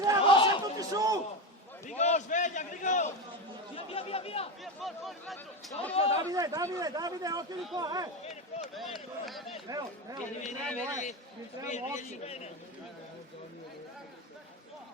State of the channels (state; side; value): normal; both; correlation 0.17